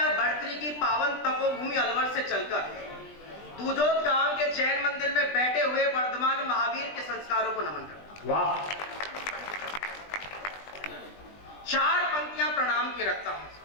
भर्तृहरि की पावन तपोभूमि अलवर से चलकर दूजोत गांव के जैन मंदिर में बैठे हुए वर्धमान महावीर के संस्कारों को नमन करता हूं। वाह। 4 पंक्तियां प्रणाम की रखता हूं।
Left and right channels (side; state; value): right; late; 20 ms